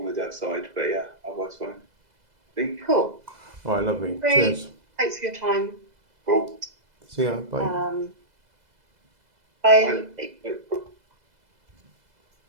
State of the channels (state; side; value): late; left; 2.0 ms